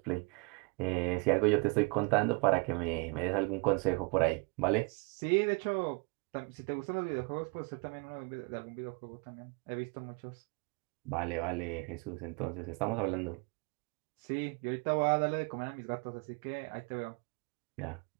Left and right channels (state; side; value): quieter; left; 30.0 dB